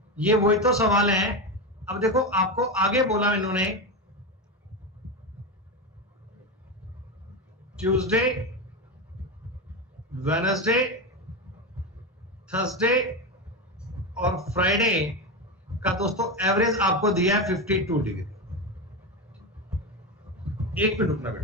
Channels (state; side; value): normal; both; correlation 0.16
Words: ये वही तो सवाल है। अब देखो आपको आगे बोला इन्होंने ट्यूसडे, वेडनेसडे, थर्सडे और फ्राइडे का दोस्तों एवरेज आपको दिया है 52 डिग्री। एक मिनट रुकना